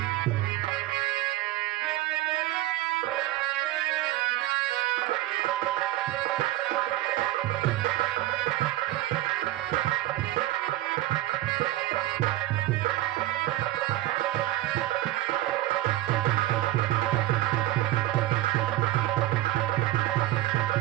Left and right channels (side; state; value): left; quieter; 15.6 dB